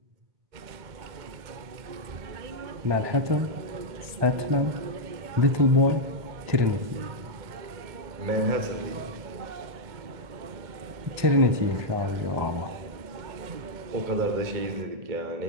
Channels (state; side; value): late; left; 1.2 ms